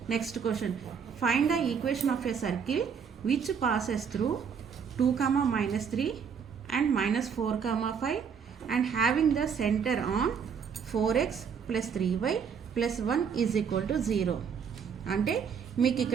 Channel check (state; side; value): quieter; left; 6.8 dB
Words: Next question, find the equation of a circle which passes through 2,-3 and -4,5 and having the centre on 4x + 3y + 1 = 0. అంటే మీకు